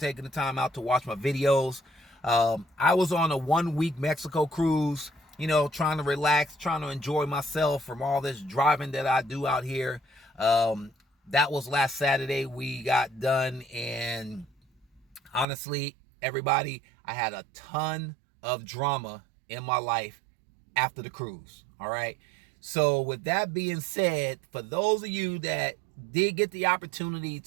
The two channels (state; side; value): drops out; left; at 15.5 s